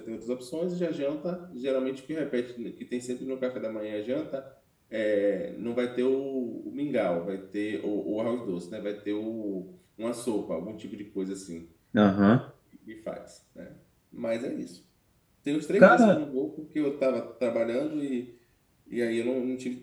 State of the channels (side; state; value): both; identical; correlation 1.00